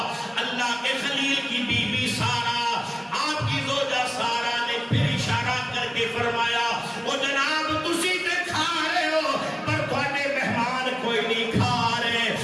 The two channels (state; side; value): identical; both; correlation 1.00